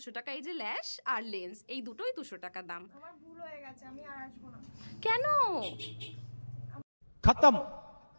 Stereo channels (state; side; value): inverted; both; correlation -1.00